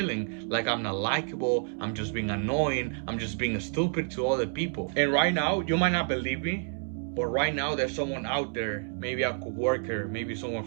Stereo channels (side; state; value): left; silent; 58 dB below the other